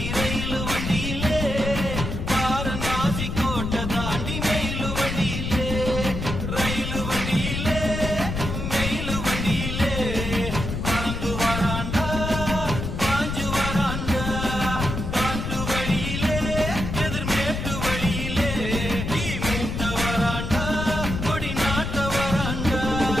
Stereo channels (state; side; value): noise; left; rumble, 4 dB below the sound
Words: ரயிலு வண்டியிலே வாரணாசி கோட்டை தாண்டி மெயிலு வண்டியிலே ரயிலு வண்டியிலே மெயிலு வண்டியிலே பறந்து வராண்டா பாஞ்சு வராண்டா காட்டு வழியிலே எதிர்மேட்டு வழியிலே நீ மூட்ட வராண்டா கொடி நாட்ட வராண்டா